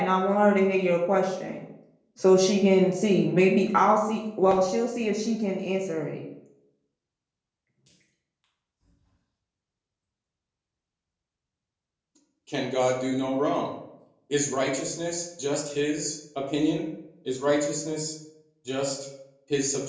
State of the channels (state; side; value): identical; both; correlation 1.00